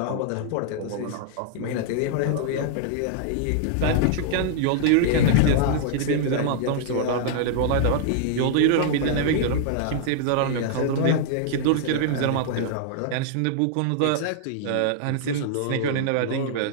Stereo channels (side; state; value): both; different; correlation -0.01